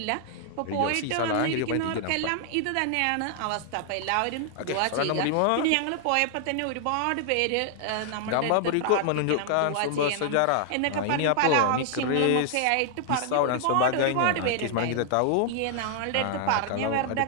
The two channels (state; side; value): different; both; correlation 0.00